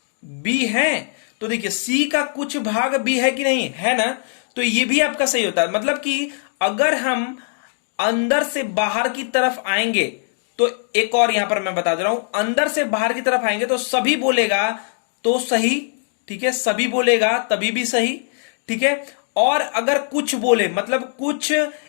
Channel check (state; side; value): silent; right; digital silence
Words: बी है, तो देखिए सी का कुछ भाग बी है कि नहीं है ना, तो ये भी आपका सही होता है। मतलब कि अगर हम अंदर से बाहर की तरफ आएंगे, तो एक और यहां पर मैं बता दे रहा हूं, अंदर से बाहर की तरफ आएंगे तो सभी बोलेगा तो सही। ठीक है, सभी बोलेगा तभी भी सही। ठीक है, और अगर कुछ बोले, मतलब कुछ